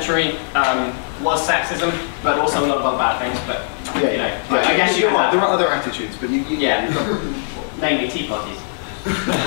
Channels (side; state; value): right; silent; digital silence